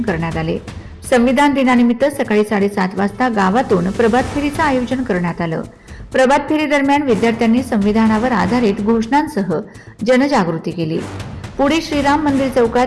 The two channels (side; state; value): both; identical; correlation 1.00